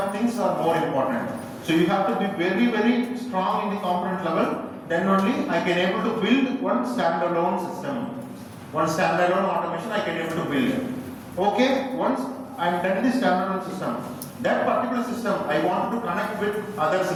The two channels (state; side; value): identical; both; correlation 1.00